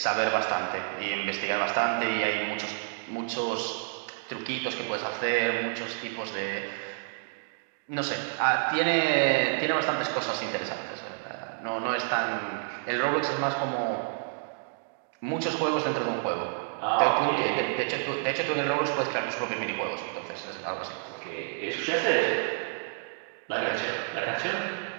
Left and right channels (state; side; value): silent; left; digital silence